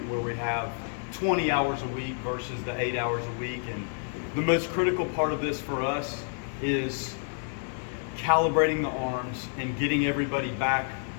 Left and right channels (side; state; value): right; silent; 58 dB below the other